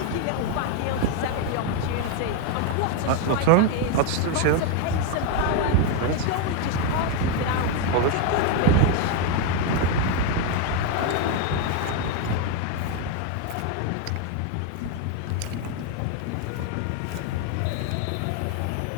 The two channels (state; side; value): different; both; correlation 0.01